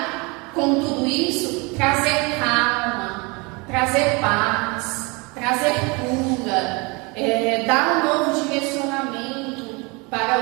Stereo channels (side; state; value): left; quieter; 28.0 dB